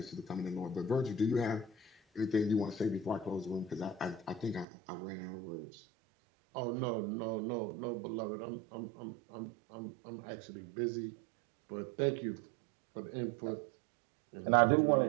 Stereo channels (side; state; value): left; drops out; at 4.7 s